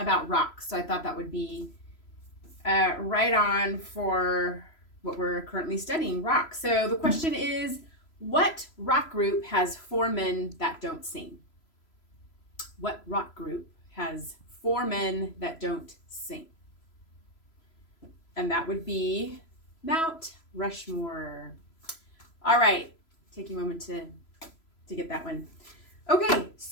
rocks, so I thought that would be right on for what we're currently studying, rocks. So the question is, what rock group has four men that don't sing? What rock group has four men that don't sing? And that would be Mount Rushmore. All right, take a moment to get that one. Okay,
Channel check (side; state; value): right; late; 3.0 ms